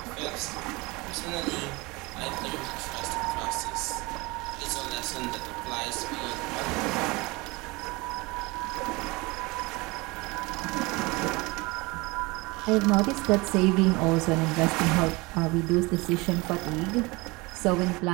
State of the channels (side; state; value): left; quieter; 24.4 dB